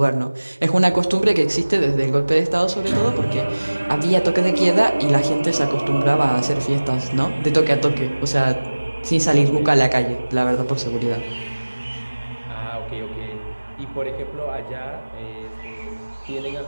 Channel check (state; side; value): inverted; both; correlation -1.00